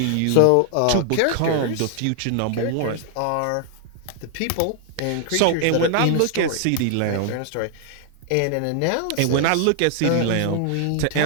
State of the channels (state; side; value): different; both; correlation 0.00